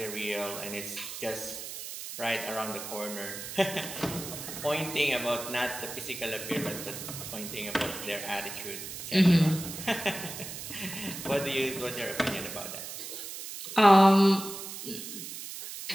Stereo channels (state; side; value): noise; right; hiss, 9 dB below the sound